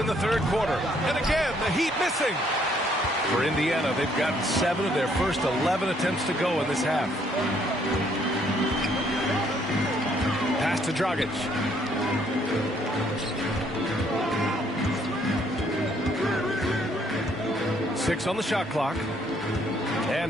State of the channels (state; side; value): normal; both; correlation 0.67